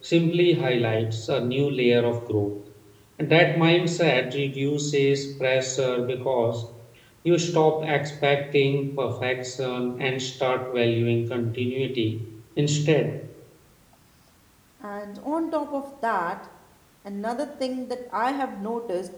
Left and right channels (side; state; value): both; identical; correlation 1.00